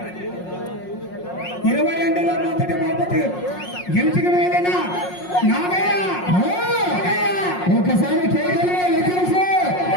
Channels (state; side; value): late; right; 5.5 ms